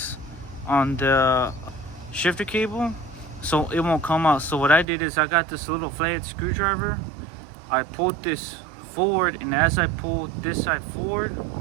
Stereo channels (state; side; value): drops out; left; at 4.9 s